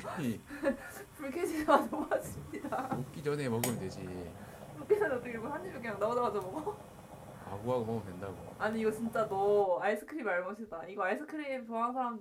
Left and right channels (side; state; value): both; identical; correlation 1.00